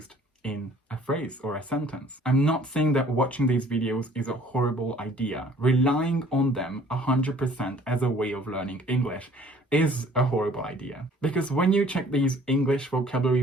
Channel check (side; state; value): both; normal; correlation 0.55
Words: in a phrase or a sentence? I'm not saying that watching these videos is a horrible idea. Relying on them 100% as a way of learning English is a horrible idea. Because when you check these English